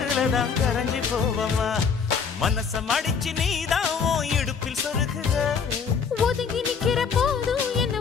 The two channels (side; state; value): right; quieter; 6.2 dB